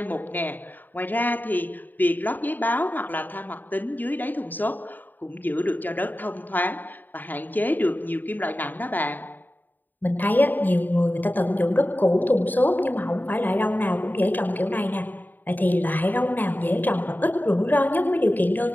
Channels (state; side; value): late; right; 0.088 ms